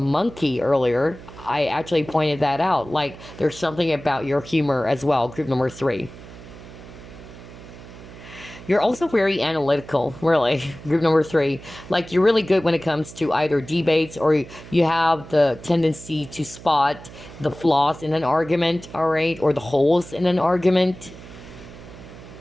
monkey earlier, I actually pointed that out. Like, there's something about your humor as well, group number 3. You're also very analytical, really, group number 3. Like, you're really good when it comes to either debates, or you have the tendency to spot the flaws in an argument, all right, or the holes in an argument.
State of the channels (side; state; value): right; noise; hum, 17 dB below the sound